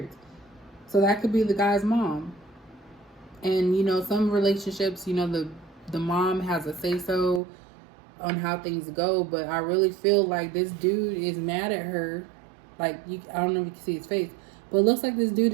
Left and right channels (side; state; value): left; drops out; at 7.4 s